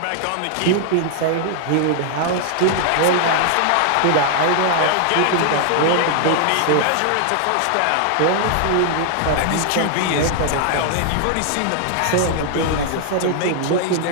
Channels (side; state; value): both; different; correlation 0.00